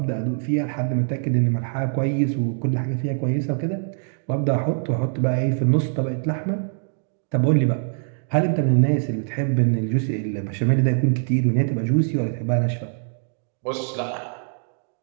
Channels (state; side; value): silent; left; digital silence